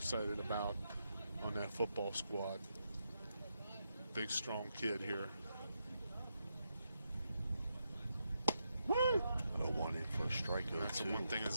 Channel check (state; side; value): inverted; both; correlation -0.83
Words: about on that football squad. Big, strong kid here. 0-1 in First strikeout. That's the one thing as